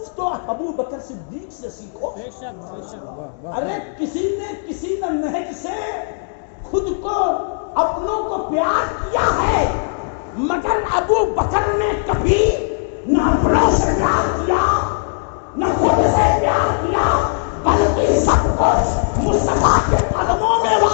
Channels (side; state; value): right; silent; digital silence